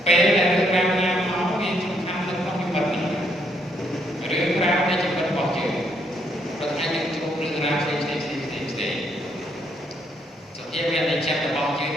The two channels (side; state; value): both; normal; correlation 0.72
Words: ពេលដែលរឿងរ៉ាវណាមកវាសំខាន់នៅក្នុងជីវិតនេះរឿងរ៉ាវនៃជីវិតរបស់យើងព្រោះអាចនឹងជួបរឿងរ៉ាវផ្សេង